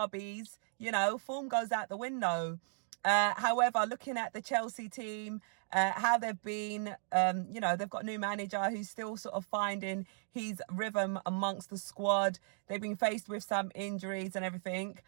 form goes out the window. However, looking at the Chelsea team, how they've been, they've got a new manager who's still sort of finding his rhythm amongst the squad. They've been faced with some injuries and everything.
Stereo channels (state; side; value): silent; left; digital silence